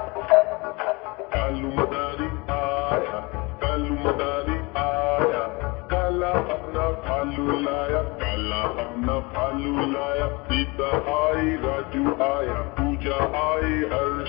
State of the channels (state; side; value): quieter; right; 26.7 dB